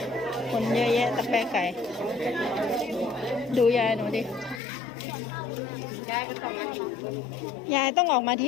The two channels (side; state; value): right; drops out; at 4.6 s